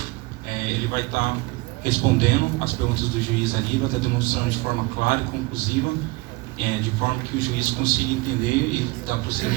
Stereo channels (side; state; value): left; quieter; 23.5 dB